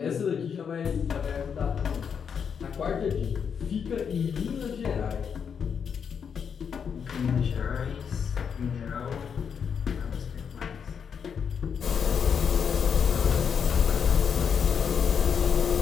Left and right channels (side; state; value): right; quieter; 7.0 dB